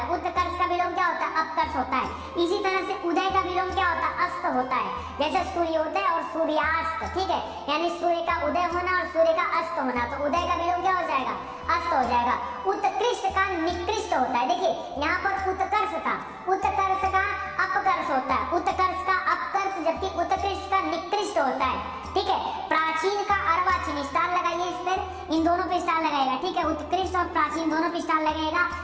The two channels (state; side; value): identical; both; correlation 1.00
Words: उत्कर्ष का विलोम क्या होता है? अपकर्ष होता है। इसी तरह से उदय का विलोम क्या होता है? अस्त होता है। जैसे सूर्योदय और सूर्यास्त। ठीक है, यानी सूर्य का उदय होना और सूर्य का अस्त होना। तो उदय का विलोम क्या हो जाएगा? अस्त हो जाएगा। उत्कृष्ट का निकृष्ट होता है। देखिए यहाँ पर उत्कर्ष का अपकर्ष होता है। उत्कर्ष का अपकर्ष, जबकि उत्कृष्ट का निकृष्ट होता है। ठीक है, प्राचीन का अर्वाचीन। स्टार लगाइए इस पर, इन दोनों पे स्टार लगाएगा। ठीक है, उत्कृष्ट और प्राचीन दोनों पे स्टार लगेगा।